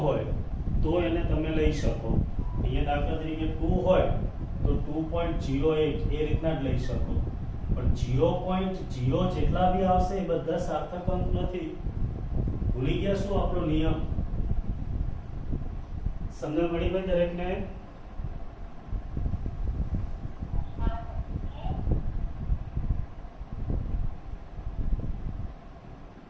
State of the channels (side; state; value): both; identical; correlation 1.00